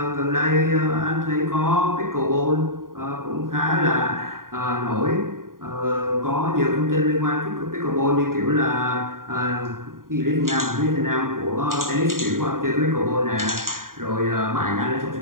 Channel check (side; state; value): left; late; 0.91 ms